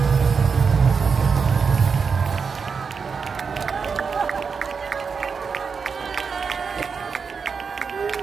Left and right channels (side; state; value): left; quieter; 5.6 dB